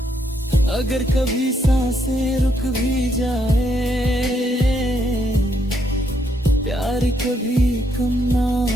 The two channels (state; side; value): normal; both; correlation 0.74